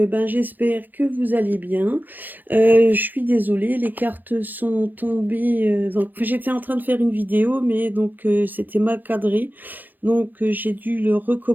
j'espère que vous allez bien. Je suis désolée, les cartes sont tombées. J'étais en train de faire une vidéo, mais donc c'était mal cadré. Donc, j'ai dû le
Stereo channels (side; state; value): left; late; 0.086 ms